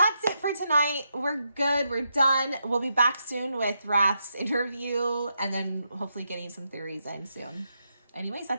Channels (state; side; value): inverted; both; correlation -0.82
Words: it for tonight. We're good. We're done. We'll be back soon with Rath's interview and then hopefully getting some theories in soon. Anyways,